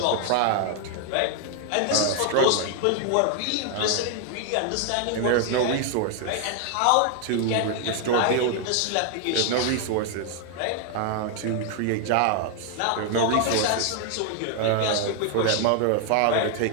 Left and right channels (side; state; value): both; different; correlation 0.00